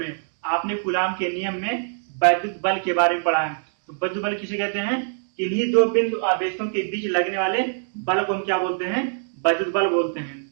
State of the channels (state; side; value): silent; left; digital silence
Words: आपने कूलाम के नियम में वैद्युत बल के बारे में पढ़ा है। तो वैद्युत बल किसे कहते हैं, इन्हीं दो बिंदु आवेशों के बीच लगने वाले बल को हम क्या बोलते हैं, वैद्युत बल बोलते हैं,